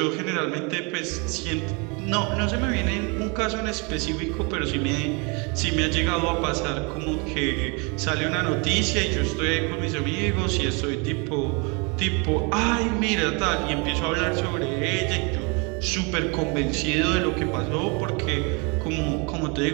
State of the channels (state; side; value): quieter; left; 31.5 dB